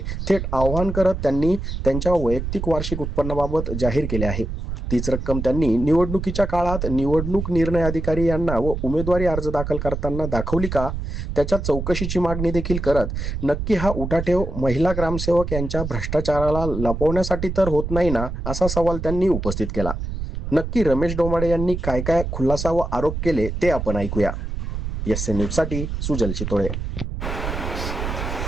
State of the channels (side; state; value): right; noise; rumble, 4 dB below the sound